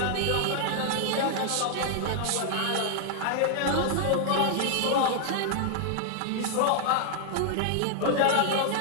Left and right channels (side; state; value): both; different; correlation -0.01